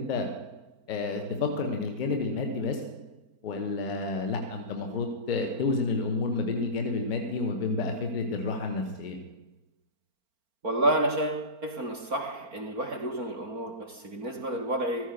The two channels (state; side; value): late; left; 4.4 ms